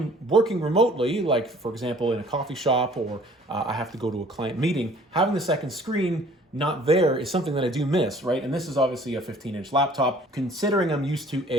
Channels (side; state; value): both; normal; correlation 0.54